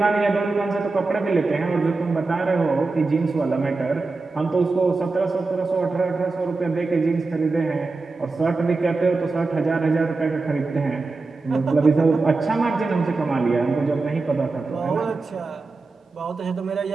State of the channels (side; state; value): left; quieter; 3.7 dB